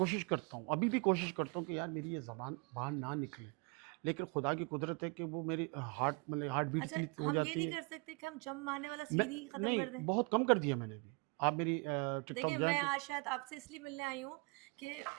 करता हूँ, अभी भी कोशिश करता हूँ कि यार मेरी ये ज़बान बाहर ना निकले। लेकिन खुदा की कुदरत है कि वो मेरी हार्ट बीट अच्छा, इतनी हो हम ये जाती नहीं है। कर सकते कि हम जंप मारने वाला मैं सीन ही खत्म नहीं, कर दें? बहुत कम कर दिया मैंने भी। आप मेरी टिकटॉक देखिए, जाएँ मैं तो आज शायद आपसे इसलिए मिलने आई हूँ कि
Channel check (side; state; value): left; quieter; 32.1 dB